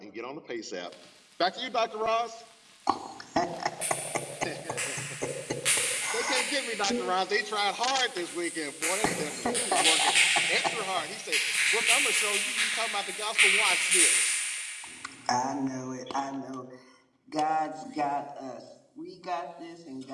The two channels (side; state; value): both; identical; correlation 1.00